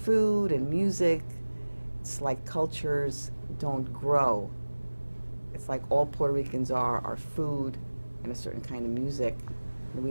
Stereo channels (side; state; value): both; inverted; correlation -1.00